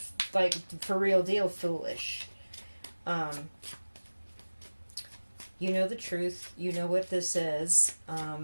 like for real deal foolish. You know the truth. You know what this is.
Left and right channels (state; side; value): inverted; both; correlation -1.00